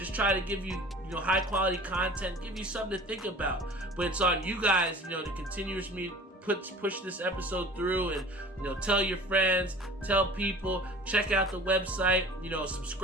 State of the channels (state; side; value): normal; both; correlation 0.43